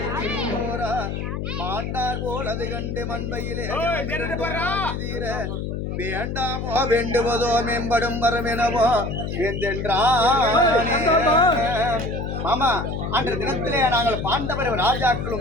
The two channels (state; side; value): noise; left; hum, 4 dB below the sound